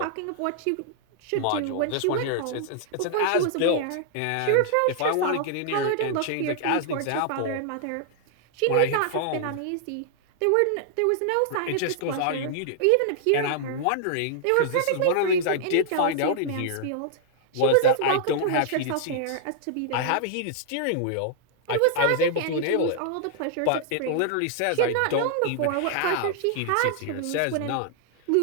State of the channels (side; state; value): both; different; correlation -0.01